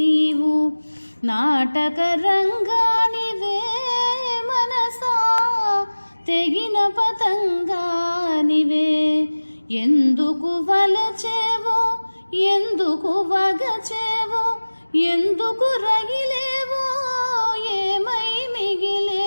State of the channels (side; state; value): both; inverted; correlation -1.00